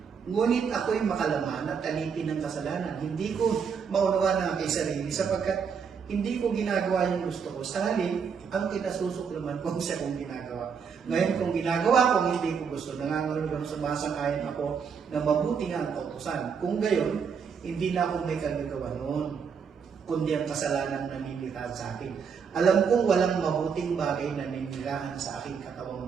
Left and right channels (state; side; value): quieter; left; 6.4 dB